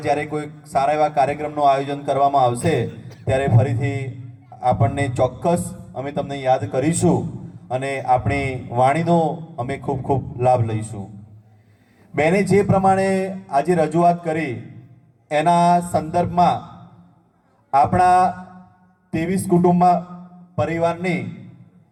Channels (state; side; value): identical; both; correlation 1.00